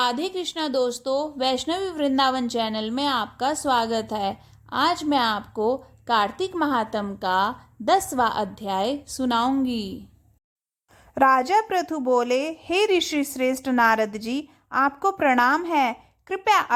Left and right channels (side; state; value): both; identical; correlation 1.00